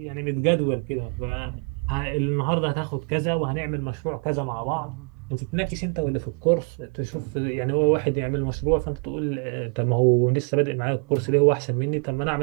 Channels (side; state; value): left; quieter; 36.6 dB